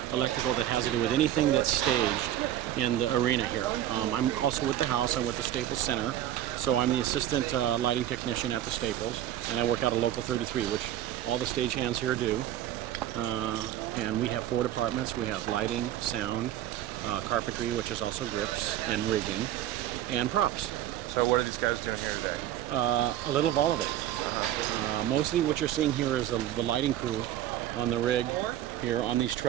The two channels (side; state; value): left; quieter; 12.4 dB